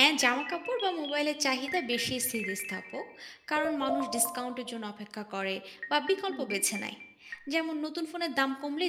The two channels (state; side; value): identical; both; correlation 1.00